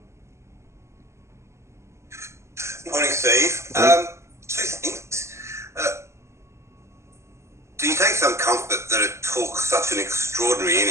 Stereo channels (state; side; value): late; left; 0.13 ms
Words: Morning, Steve. Two things. Do you take some comfort that it took such an extraordinary